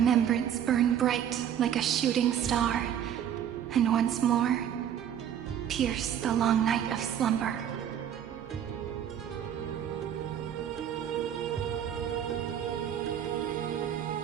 burn bright like a shooting star, and once more, pierce the long night of slumber.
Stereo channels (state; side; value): quieter; left; 9.6 dB